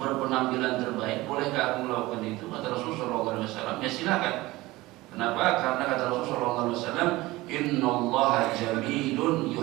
terbaik, bolehkah aku melakukan itu?" Kata Rasulullah SAW, "Ya silakan." Kenapa? Karena kata Rasulullah SAW, "Innallaha jamilun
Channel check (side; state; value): left; quieter; 19.5 dB